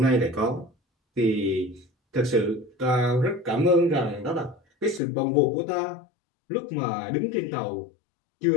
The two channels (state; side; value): drops out; right; at 5.0 s